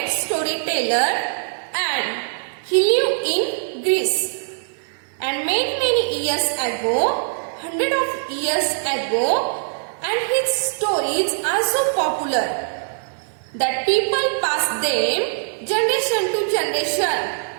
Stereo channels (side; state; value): left; silent; digital silence